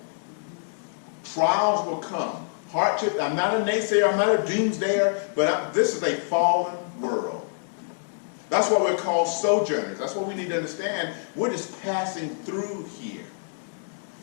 Trials will come. Hardship. I'm not a naysayer. I'm not a doomsdayer. But this is a fallen world. That's why we're called sojourners. That's what we need to understand. We're just passing through here.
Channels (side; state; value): right; silent; digital silence